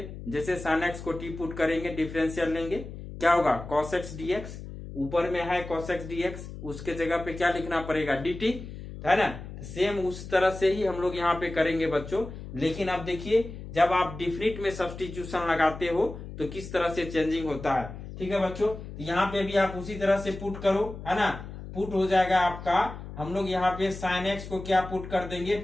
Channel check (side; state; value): left; noise; hum, 11 dB below the sound